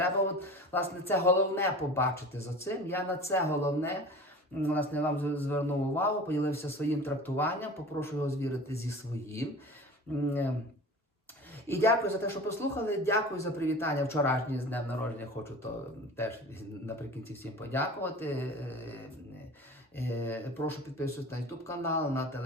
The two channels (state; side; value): normal; both; correlation 0.38